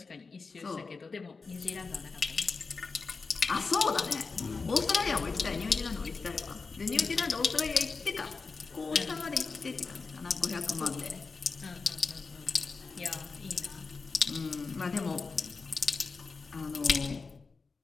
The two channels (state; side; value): quieter; right; 4.4 dB